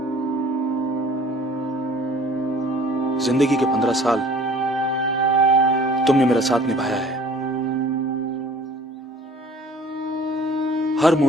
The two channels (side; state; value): both; normal; correlation 0.51